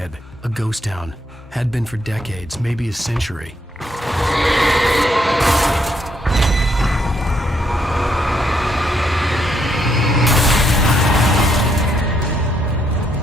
a ghost town. Had been for decades, maybe a century.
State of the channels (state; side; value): normal; both; correlation 0.74